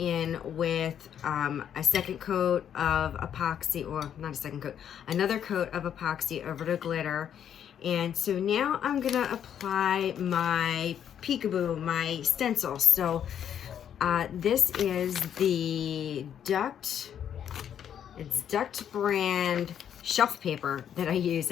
with a second coat of epoxy, or not a second coat, another coat of epoxy over the glitter. And so now I'm gonna apply my peekaboo, my stencil. So this is the Duct, it's Duct brand shelf paper that I use.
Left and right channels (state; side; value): quieter; right; 9.2 dB